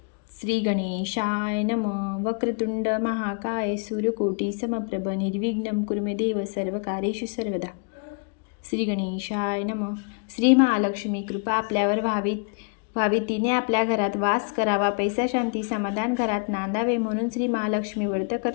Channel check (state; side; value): quieter; right; 38.6 dB